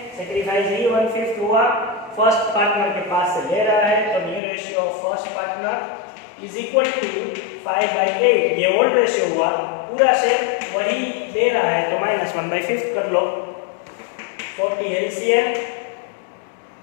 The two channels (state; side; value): drops out; right; at 4.4 s